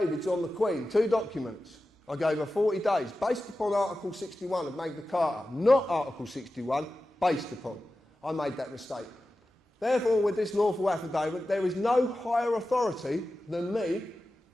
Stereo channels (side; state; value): both; normal; correlation 0.94